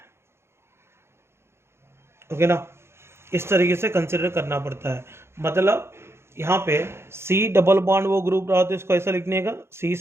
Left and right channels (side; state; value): left; late; 0.12 ms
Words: ओके ना, इस तरीके से कंसिडर करना पड़ता है। मतलब यहाँ पे सी डबल बॉन्ड वो ग्रुप रहा तो इसको ऐसा लिखने का, C